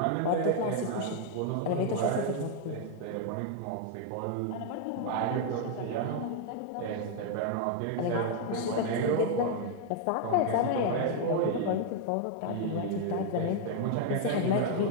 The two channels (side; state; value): both; different; correlation 0.00